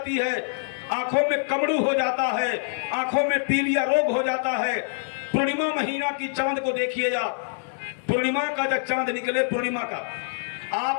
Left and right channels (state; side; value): silent; right; digital silence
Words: है, आंखों में कमड़ू हो जाता है, आंखों में पीलिया रोग हो जाता है। पूर्णिमा महीना की चांद को देखिएगा, पूर्णिमा का जब चांद निकले, पूर्णिमा का